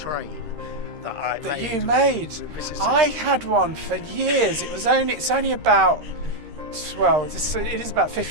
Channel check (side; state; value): left; late; 13 ms